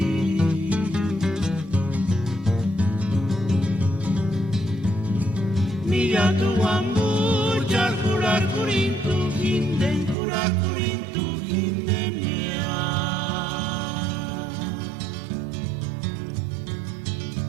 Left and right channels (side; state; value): left; drops out; at 10.2 s